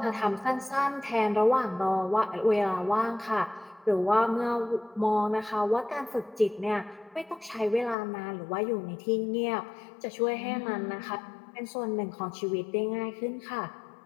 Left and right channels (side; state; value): right; drops out; at 8.0 s